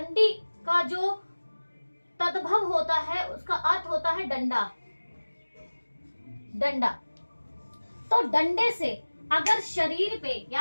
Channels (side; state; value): both; inverted; correlation -1.00